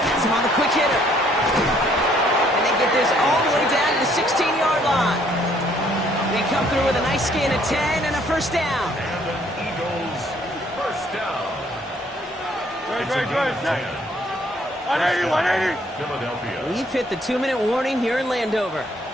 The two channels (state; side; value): normal; both; correlation 0.64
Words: That's him on the quick hitter. And they get this all the way down to the 16-yard line. through with a nice gain of 10 and a first down. And an Eagles first down. Good. 180, 180. Philadelphia. We've hit the 2-minute warning here in Landover.